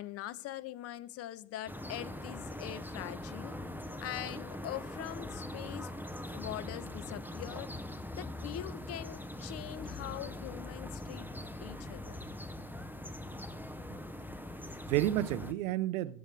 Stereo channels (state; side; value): normal; both; correlation 0.29